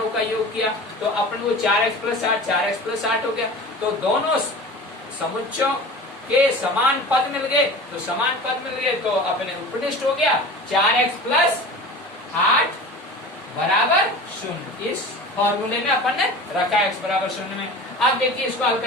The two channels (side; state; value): both; normal; correlation 0.36